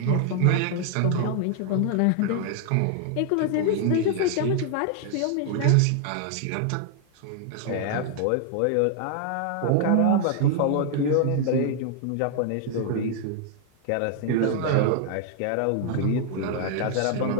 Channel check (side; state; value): both; different; correlation 0.00